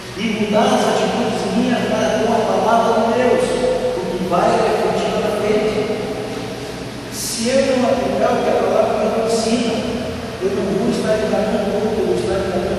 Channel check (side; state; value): both; identical; correlation 1.00